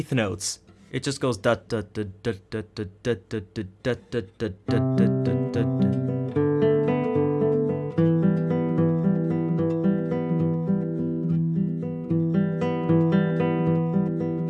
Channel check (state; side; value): identical; both; correlation 1.00